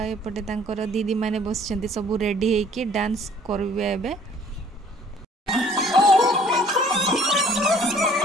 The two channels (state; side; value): normal; both; correlation 0.56